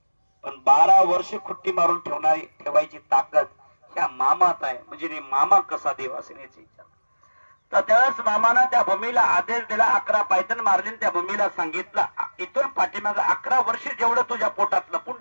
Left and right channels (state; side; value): inverted; both; correlation -1.00